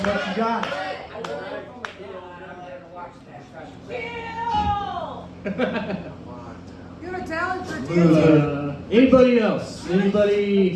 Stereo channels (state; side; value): identical; both; correlation 1.00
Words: what you got? You have a talent for dancing. Anybody else?